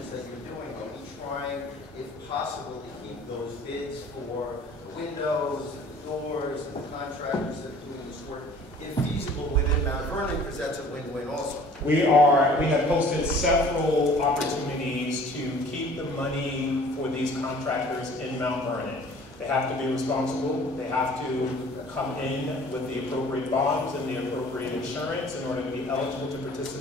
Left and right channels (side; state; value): both; normal; correlation 0.50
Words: that you're doing. Are we trying, if possible, to keep those bids for windows, doors, and the contractors that are doing this work infeasible within Mount Vernon, because that's a win-win also? We have posted several opportunities to keep the money for these contractors in Mount Vernon. They have to be responsible. They have to come in with the appropriate bonds and the appropriate insurance in order to be eligible to